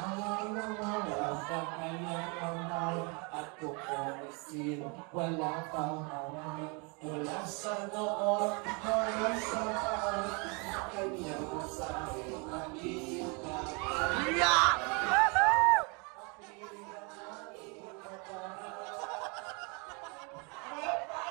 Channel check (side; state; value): left; quieter; 32.4 dB